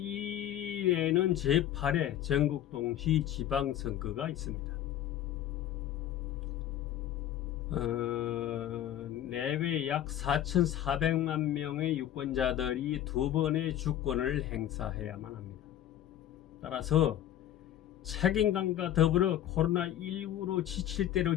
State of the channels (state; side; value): quieter; right; 11.7 dB